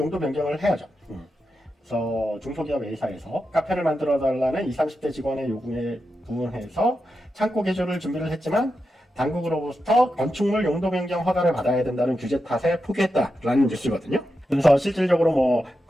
변경을 해야죠. 그래서 중소기업 A사에서 카페를 만들어 달라는 20, 30대 직원의 요구에 부응해서 창고 개조를 준비를 했지만 당국으로부터 건축물 용도 변경 허가를 받아야 된다는 규제 탓에 포기했다라는 뉴스거든요. 그래서 실질적으로 뭐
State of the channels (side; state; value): both; normal; correlation 0.88